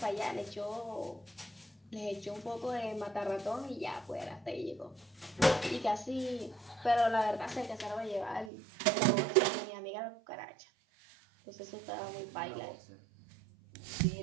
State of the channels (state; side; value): drops out; left; at 8.5 s